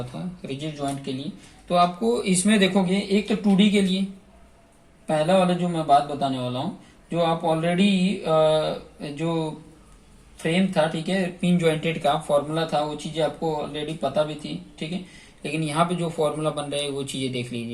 था रिजिड जॉइंट के लिए, तो आपको इसमें देखोगे एक तो 2D के लिए पहला वाला जो मैं बात बताने वाला हूँ, जो आप ऑलरेडी जो फ्रेम था, ठीक है, पिन जॉइंटेड का फॉर्मूला था, वो चीजें आपको ऑलरेडी पता भी थी, ठीक है। लेकिन यहाँ पे जो फॉर्मूला बन रहा है वो चीजें देख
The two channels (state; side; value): identical; both; correlation 1.00